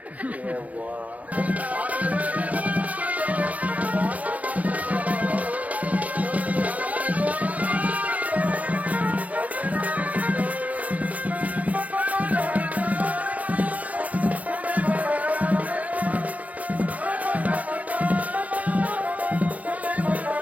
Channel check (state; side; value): late; left; 0.072 ms